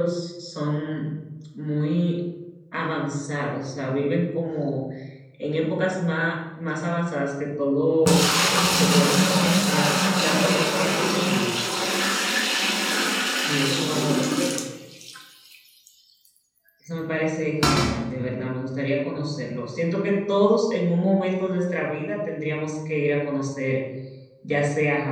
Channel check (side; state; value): both; identical; correlation 1.00